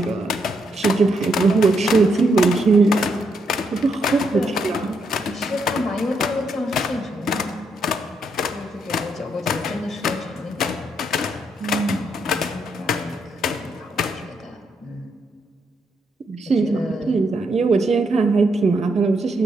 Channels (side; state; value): both; normal; correlation 0.77